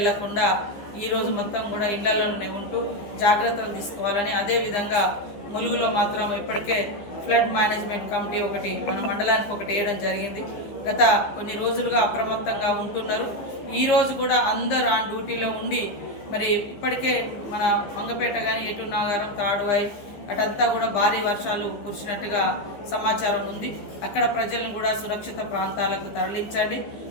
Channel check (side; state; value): right; late; 15 ms